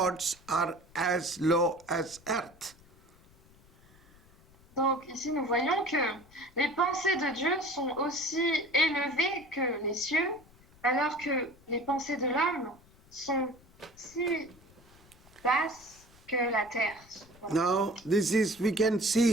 are as low as earth. Donc ici nous voyons que les pensées de Dieu sont aussi élevées que les cieux, alors que les pensées de l'homme sont si basses que la terre. Now, this is, we can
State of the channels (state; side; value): noise; left; rumble, 27 dB below the sound